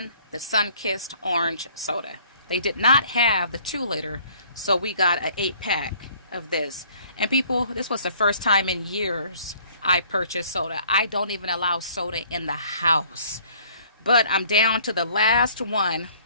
the sun-kissed orange soda. They did not have the 2-liter, so we got an 8-pack of this. And people, this was the first time in years I purchased soda. I don't even allow soda in the house. But I'm down to the last one.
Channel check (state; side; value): inverted; both; correlation -0.57